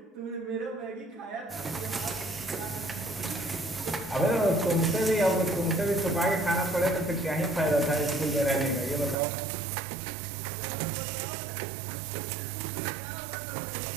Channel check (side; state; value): left; drops out; at 9.2 s